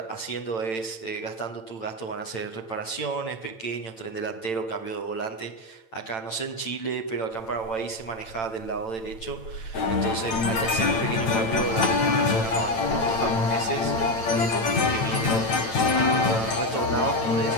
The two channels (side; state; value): right; late; 8.9 ms